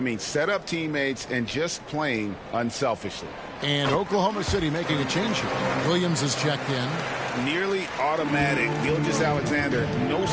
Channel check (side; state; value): both; identical; correlation 1.00